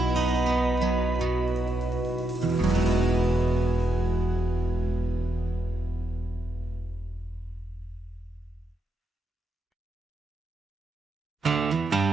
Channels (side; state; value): both; normal; correlation 0.82